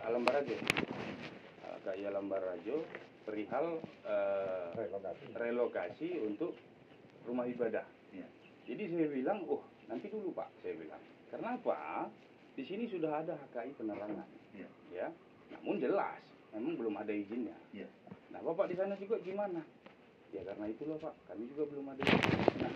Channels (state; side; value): identical; both; correlation 1.00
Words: Alam Barajo. HKI Alam Barajo perihal relokasi untuk rumah ibadah. Jadi saya bilang, oh nanti dulu Pak, saya bilang. Karena apa? Di sini sudah ada HKI Penerangan. Ya. Namun jelas, memang belum ada izinnya. Nah Bapak di sana juga gimana? Ya karena itulah Pak, kami juga belum ada izin. Nah